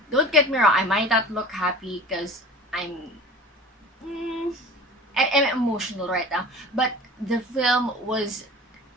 Don't get me wrong, I might not look happy because mm, I'm emotional right now, but the film was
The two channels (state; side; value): normal; both; correlation 0.39